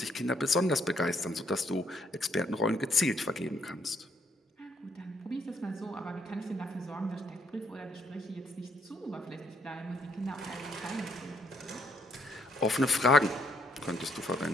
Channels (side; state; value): both; normal; correlation 0.70